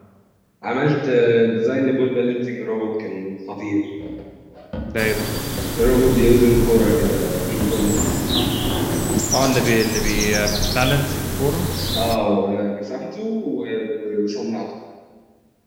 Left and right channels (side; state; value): both; identical; correlation 1.00